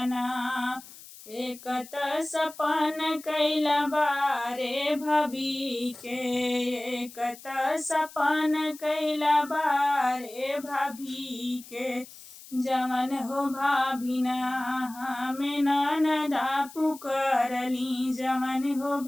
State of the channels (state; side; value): noise; left; hiss, 18 dB below the sound